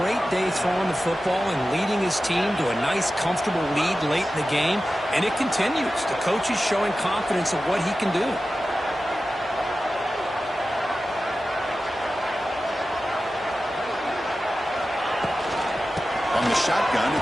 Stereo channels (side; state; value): both; normal; correlation 0.94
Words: day throwing the football and leading his team to a nice, comfortable lead late in the game, and it continues. The coach is showing confidence of what he can do. On the shotgun,